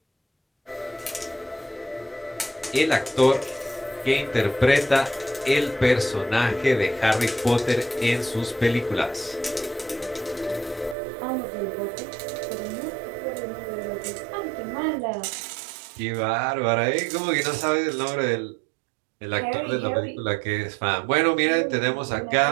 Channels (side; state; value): left; drops out; at 11.0 s